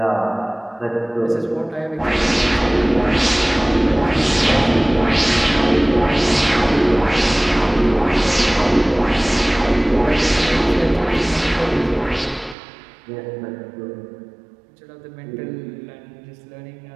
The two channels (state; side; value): drops out; left; at 12.6 s